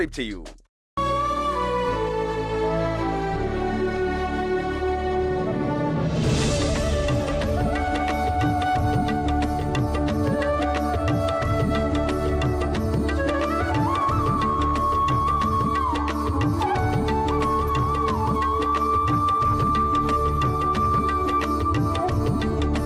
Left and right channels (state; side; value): identical; both; correlation 1.00